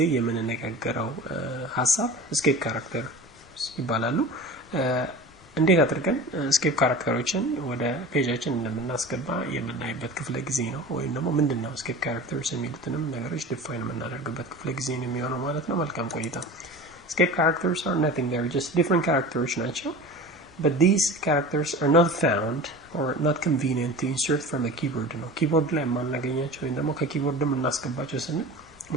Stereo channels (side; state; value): both; normal; correlation 0.35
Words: የምንነጋገረው ሐሳብ ስኬፕ ካራክተር ይባላሉ። እንዴት አድርገን ስኬፕ ካራክተሮችን ወደ ፔጃችን እንደምናስገባ የምናይበት ክፍለ ጊዜ ነው። ወይም ደግሞ ምንድነው ስኬፕ ካራክተርስ የሚሉትንም ነገሮች ዲፋይን የምናደርግበት ክፍለ ጊዜ ነው የሚሆነው ማለት ነው። መልካም ቆይታ። ስኬፕ ካራክተርስ are nothing, they're just different characters ናቸው. But these characters are not found or not convenient to insert from a keyboard ነው. ኪቦርድ ላይ ማናገኛቸው ወይም ደግሞ ከኪቦርድም እናስገባቸው ስንል